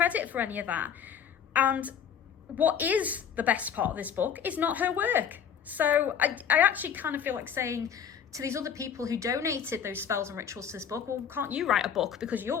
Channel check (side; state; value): right; quieter; 8.0 dB